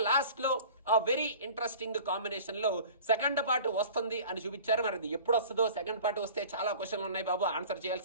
లాస్ట్ లో వెరీ ఇంట్రెస్టింగ్ కాంబినేషన్ లో సెకండ్ పార్ట్ వస్తుంది అని చూపించారు. మరి అది ఎప్పుడు వస్తుందో, సెకండ్ పార్ట్ వస్తే చాలా క్వశ్చన్లు ఉన్నాయి బాబు ఆన్సర్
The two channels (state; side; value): inverted; both; correlation -0.44